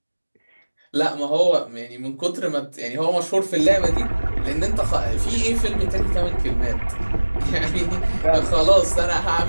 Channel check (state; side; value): inverted; both; correlation -1.00